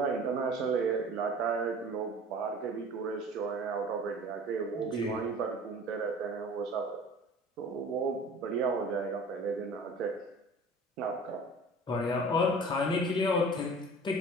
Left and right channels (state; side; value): normal; both; correlation 0.43